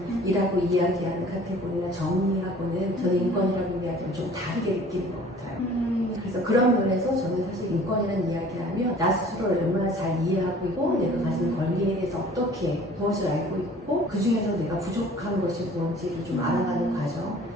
이야기하는 카테고리나 정의하고는 저는 인권이라고 이야기하면 좀 다르게 느끼는 것 같아요. 그래서 그런 면에서 저는 사실 인권이라는 이야기하면 나 스스로를 얼마나 잘 이해하고 있고 내가 가진 권리에 대해서 어떻게 무엇을 알고 있고 그 중에서 내가 부족한 것이 무엇인지를 좀 알아가는 과정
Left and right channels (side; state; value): both; normal; correlation 0.49